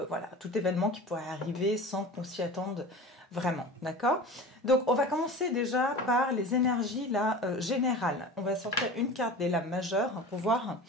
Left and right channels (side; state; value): both; normal; correlation 0.35